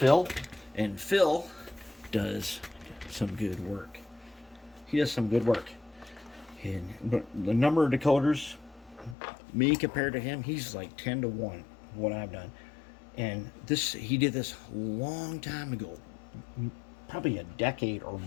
and Phil does some good work. He does some good work. But the number of decoders, me compared to him, he's like 10 to 1 what I've done. And he did this a long time ago, probably a decade or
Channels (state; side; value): drops out; right; at 9.2 s